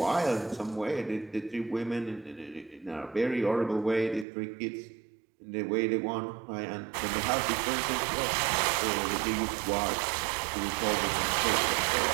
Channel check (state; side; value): drops out; left; at 4.2 s